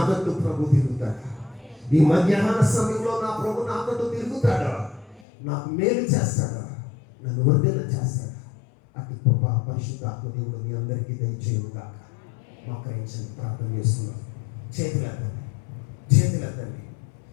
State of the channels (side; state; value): right; drops out; at 5.2 s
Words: తట్టు ప్రభు తిరుగుతాడు. ఈ మధ్యాహ్న సమయంలో నా ప్రభు నా తట్టు తిరుగుతాడు, నాకు మేలు చేస్తాడు, నన్ను వర్ధిల్ల చేస్తాడు. అటు గొప్ప పరిశుద్ధాత్మ దేవుడు మీ అందరికీ దయచేయను గాక. మోకరించండి, ప్రార్థన చేస్తున్నాం. చేతులెత్తండి,